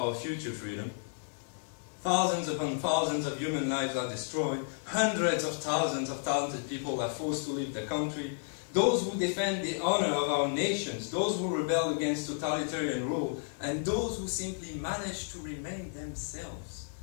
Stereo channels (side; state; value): right; silent; digital silence